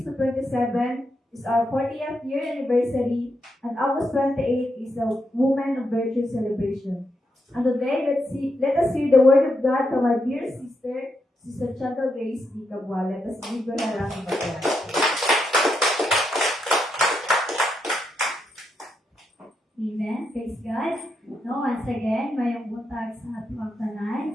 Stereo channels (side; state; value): both; normal; correlation 0.82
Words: to 27 is our 40th year anniversary, and August 28 is the Women of Virtue celebration. And today, let us hear the word of God from our dear sister, Sister Chantal Grace D. Cabua. Let us give her a round of applause. Amen. Praise God. No, once again, mayong buntag sa atong tanan,